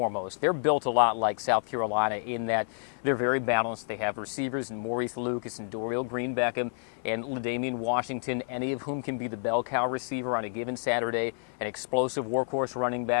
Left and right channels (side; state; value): right; silent; 56 dB below the other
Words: They're built a lot like South Carolina in that they're very balanced. They have receivers in Maurice Lucas and Dorial Green Beckham and LaDainian Washington, any of whom can be the bell cow receiver on a given Saturday, an explosive workhorse running